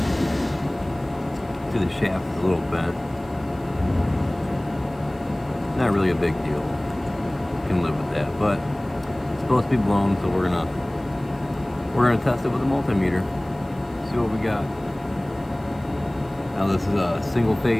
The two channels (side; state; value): left; noise; hiss, 29 dB below the sound